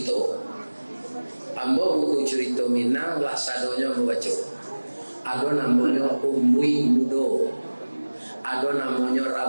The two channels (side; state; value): both; inverted; correlation -1.00